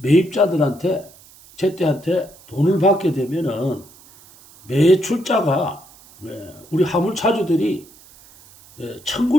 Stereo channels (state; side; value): noise; right; hiss, 24 dB below the sound